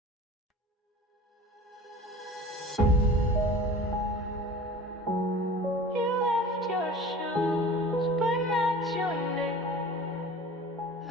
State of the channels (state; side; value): normal; both; correlation 0.40